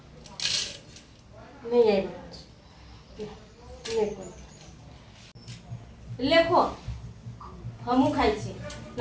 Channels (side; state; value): both; identical; correlation 1.00